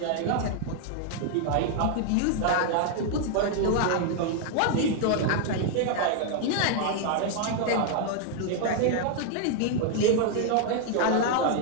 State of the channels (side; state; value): both; different; correlation 0.00